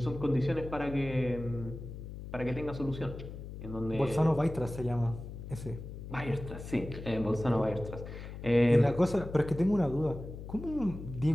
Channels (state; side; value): noise; left; hum, 10 dB below the sound